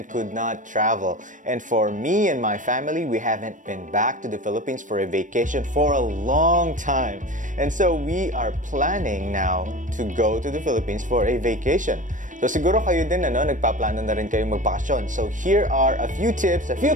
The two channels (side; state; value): left; late; 0.37 ms